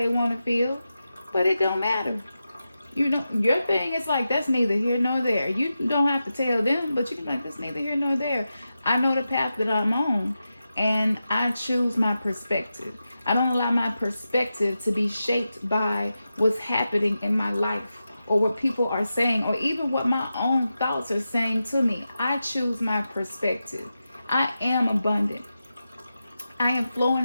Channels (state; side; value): inverted; both; correlation -0.91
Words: want to feel. But it don't matter. You know, your thing is like, that's neither here nor there. You don't have to tell them, but you can be like, that's neither here nor there. I know the path that I'm on, and I choose my perspective. I don't allow my perspective to be shaped by what's happening in my life or what people are saying or even what my own thoughts are saying to me. I choose my perspective. I am abundant. I am flowing